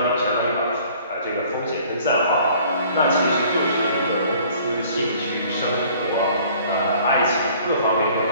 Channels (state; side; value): inverted; both; correlation -0.54